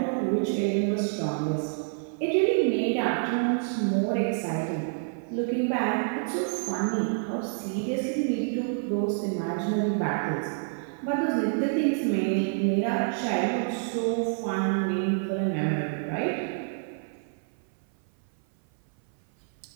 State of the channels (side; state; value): left; silent; 57 dB below the other